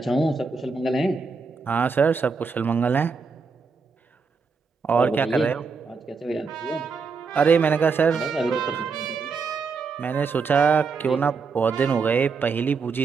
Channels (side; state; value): left; quieter; 4.9 dB